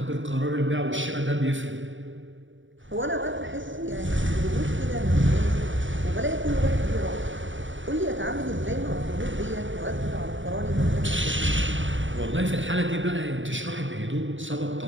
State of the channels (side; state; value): left; late; 0.56 ms